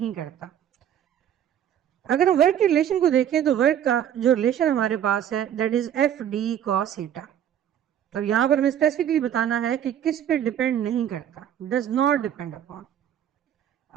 करता। अगर हम वर्क के रिलेशन को देखें तो वर्क का जो रिलेशन हमारे पास है that is F D cos theta. तो यहाँ पर हमें स्पेसिफिकली बताना है कि किस पे डिपेंड नहीं करता, डज नॉट डिपेंड अपॉन।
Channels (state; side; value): quieter; left; 10.0 dB